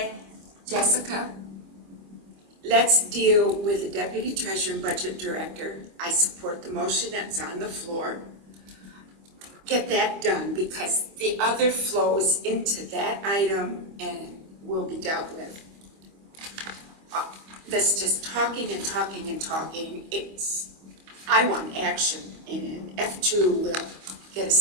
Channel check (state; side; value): late; left; 25 ms